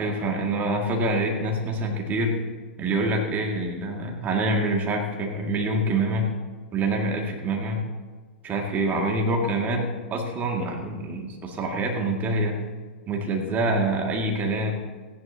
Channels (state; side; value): normal; both; correlation 0.06